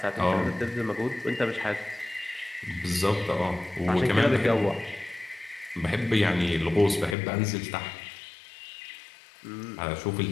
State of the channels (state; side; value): drops out; right; at 7.2 s